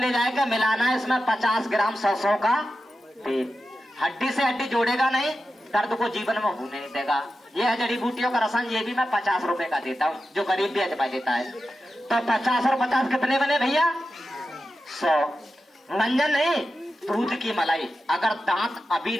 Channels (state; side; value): normal; both; correlation 0.91